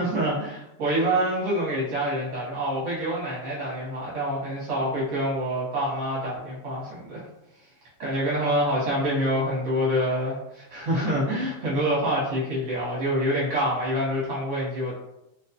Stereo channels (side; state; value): left; late; 7.1 ms